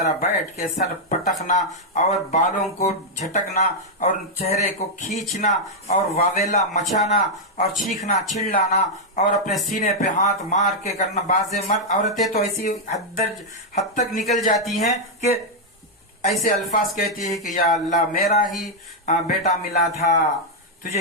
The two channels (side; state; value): both; normal; correlation -0.02